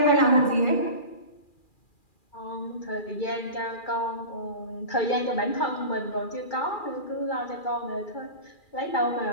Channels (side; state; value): right; late; 2.4 ms